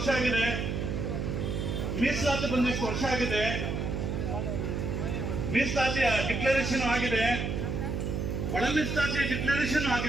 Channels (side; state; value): right; noise; hum, 2 dB below the sound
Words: ಆಗಿದೆ, ಮೀಸಲಾತಿ ಬಂದಿಷ್ಟು ವರ್ಷ ಆಗಿದೆ, ಮೀಸಲಾತಿಯ ಡಿಕ್ಲರೇಷನ್ ಆಗಿದೆ, ಒಳ ಮೀಸಲಾತಿಯ ಡಿಕ್ಲರೇಷನ್